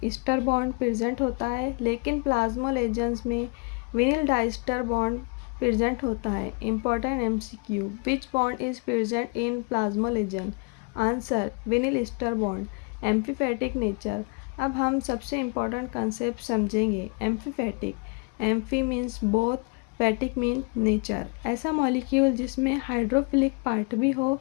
ईस्टर बॉन्ड प्रेजेंट होता है, लेकिन प्लाज्मोलेजेंस में विनिल डाइस्टर बॉन्ड प्रेजेंट होता है। Important MCQ, which bond is present in plasmalogen? Answer vinyl ester bond. Amphipathic nature, अब हम सबसे इम्पॉर्टेंट कंसेप्ट समझेंगे। Amphipathic, amphi means both, phatic mean nature. ऐसा मॉलिक्यूल जिसमें हाइड्रोफिलिक पार्ट भी हो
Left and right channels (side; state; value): right; quieter; 32.5 dB